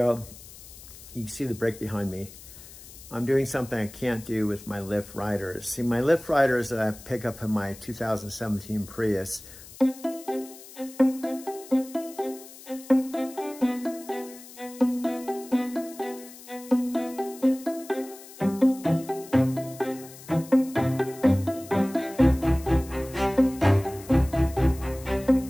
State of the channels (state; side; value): noise; left; hiss, 18 dB below the sound